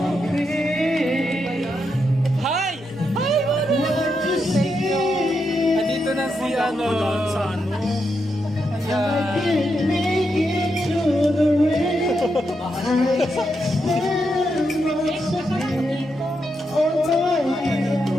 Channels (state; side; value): normal; both; correlation 0.83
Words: Hi! Hi! Andito na si ano. Sa ano?